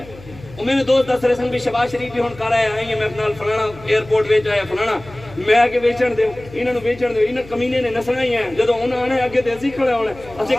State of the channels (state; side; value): noise; left; hum, 19 dB below the sound